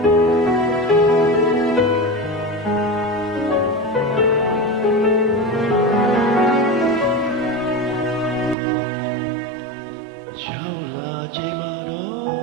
ရောက်လာချိန်မှာတေ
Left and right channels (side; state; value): left; drops out; at 8.6 s